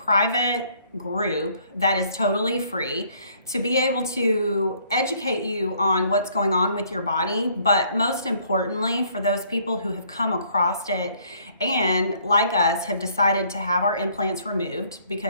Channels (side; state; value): both; inverted; correlation -0.63